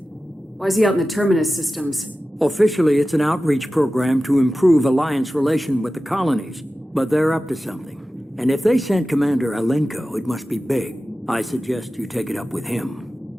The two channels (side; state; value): both; normal; correlation 0.95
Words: Why is he out in the Terminus systems? Officially, it's an outreach program to improve Alliance relation with the colonies, but they're up to something. And if they sent Commander Alenko, it must be big. I suggest you take it up with